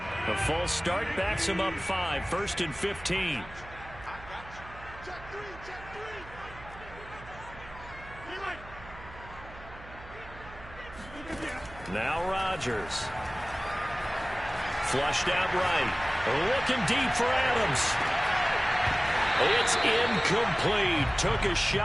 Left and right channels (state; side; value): noise; right; hum, 17 dB below the sound